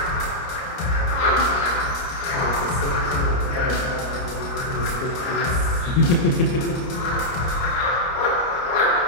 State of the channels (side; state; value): right; late; 30 ms